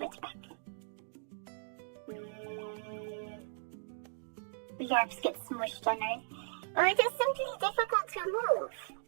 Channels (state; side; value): silent; left; digital silence